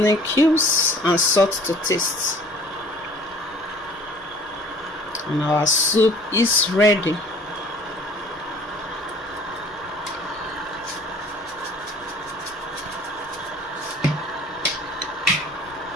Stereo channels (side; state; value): both; normal; correlation 0.51